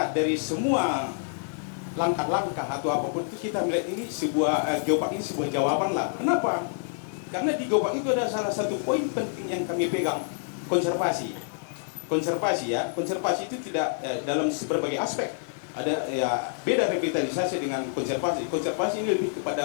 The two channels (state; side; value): silent; right; digital silence